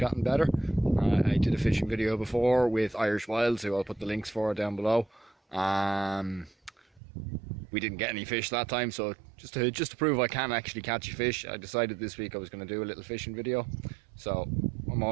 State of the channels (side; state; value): left; drops out; at 7.0 s